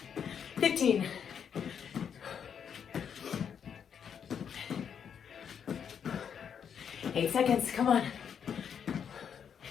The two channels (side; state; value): right; quieter; 7.7 dB